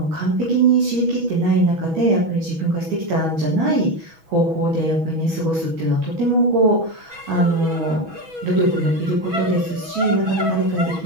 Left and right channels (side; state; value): left; late; 6.2 ms